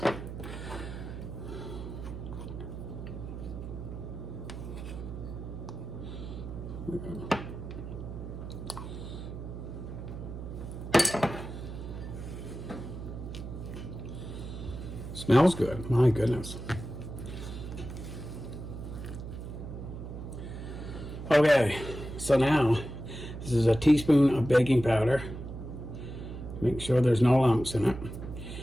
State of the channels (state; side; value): noise; right; hum, 8 dB below the sound